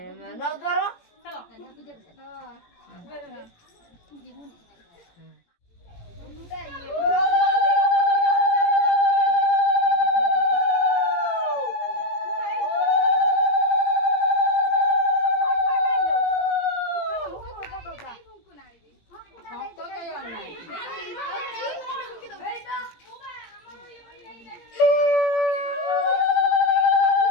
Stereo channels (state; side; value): late; right; 17 ms